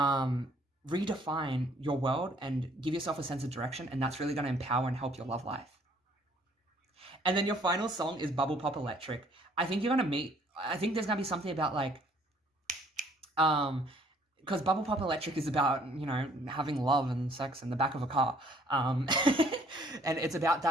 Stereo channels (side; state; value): both; normal; correlation 0.61